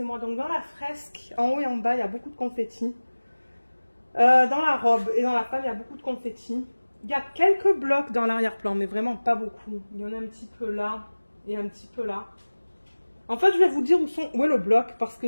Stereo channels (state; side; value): inverted; both; correlation -1.00